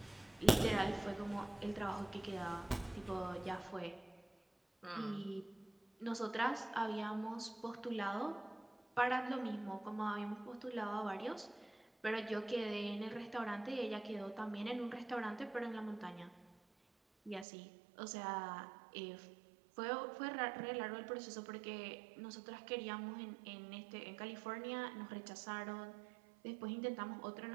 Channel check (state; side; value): drops out; left; at 17.4 s